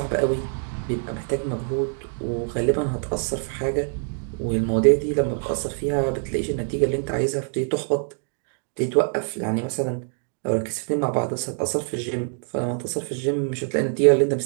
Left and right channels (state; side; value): silent; left; 61 dB below the other